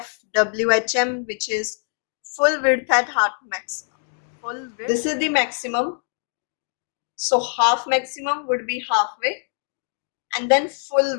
which is full width at half maximum. Full width. This is the maximum. So half maximum would be halfway, and then full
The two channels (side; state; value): right; silent; 63 dB below the other